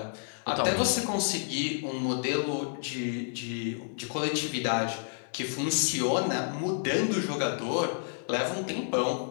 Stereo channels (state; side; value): silent; right; 58 dB below the other